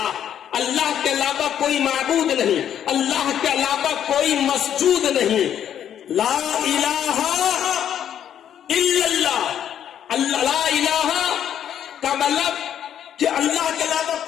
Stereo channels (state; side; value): quieter; right; 9.8 dB